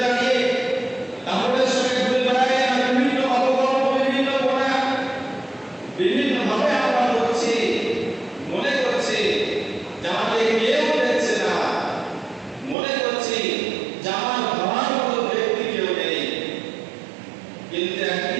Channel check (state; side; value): drops out; left; at 12.8 s